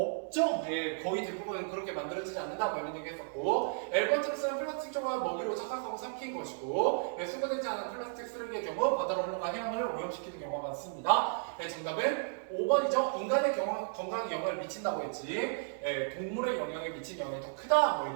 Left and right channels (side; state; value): left; silent; digital silence